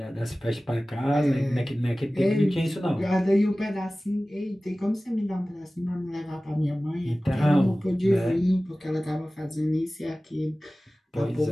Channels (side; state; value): both; normal; correlation 0.97